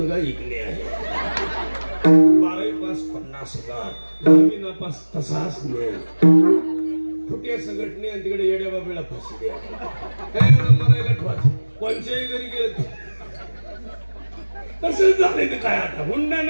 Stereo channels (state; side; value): inverted; both; correlation -1.00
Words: इकणे आहे. 12वी पास 50,000, 10वी नापास तसाच नाही. फुट्या संघटने आणि तिकडे येड्या बाबेला फाशी द्या. काय मरायला ठेवायचं कोणच्याही घरी गेलं तसंच झालंय. तर काय आता हुंडा